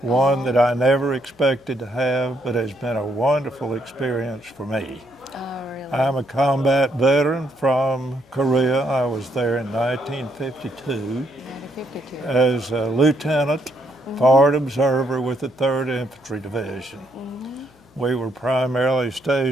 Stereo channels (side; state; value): both; normal; correlation 0.74